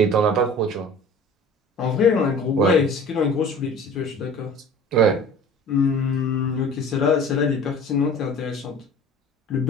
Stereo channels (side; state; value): both; normal; correlation 0.43